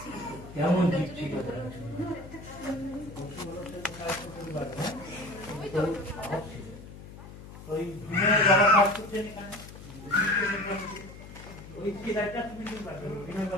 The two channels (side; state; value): left; noise; hum, 15 dB below the sound